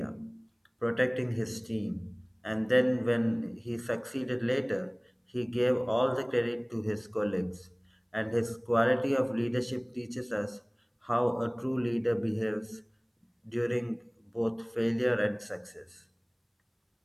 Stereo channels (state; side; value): identical; both; correlation 1.00